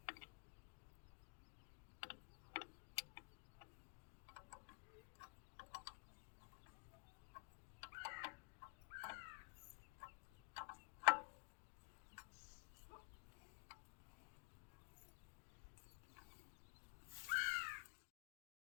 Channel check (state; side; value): quieter; right; 35.5 dB